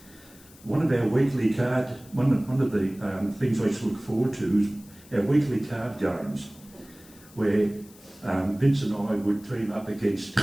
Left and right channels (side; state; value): left; noise; hiss, 24 dB below the sound